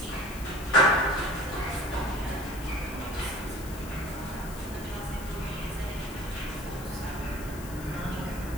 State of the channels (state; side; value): noise; left; hiss, 15 dB below the sound